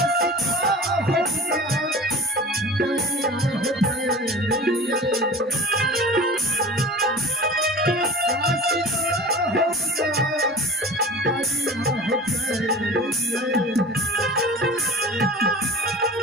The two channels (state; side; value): normal; both; correlation 0.38